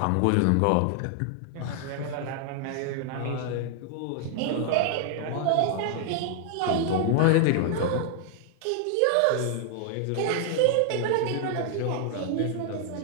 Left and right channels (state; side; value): different; both; correlation 0.00